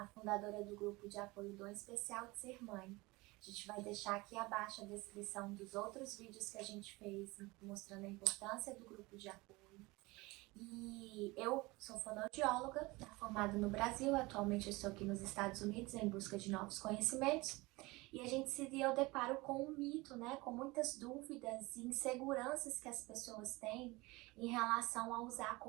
fundadora do grupo de apoio Dom Especial de Ser Mãe. A gente vai deixar aqui abaixo a descrição dos outros vídeos que a gente fez mostrando a importância do grupo de apoio. E eu sou fonoaudióloga, formada no Brasil, atualmente eu estou aqui nos Estados Unidos em busca de novos conhecimentos. E a gente se deu deparo com um mito, né, com muitas dúvidas e inseguranças que as pessoas têm em relação a usar a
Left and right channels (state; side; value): quieter; left; 22.7 dB